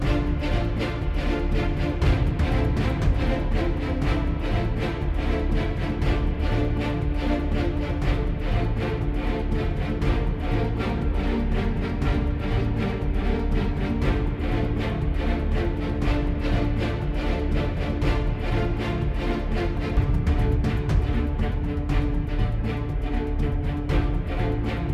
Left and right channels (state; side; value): identical; both; correlation 1.00